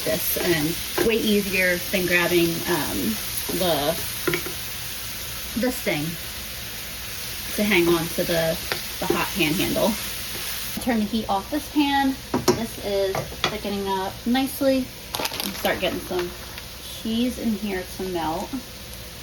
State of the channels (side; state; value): both; identical; correlation 1.00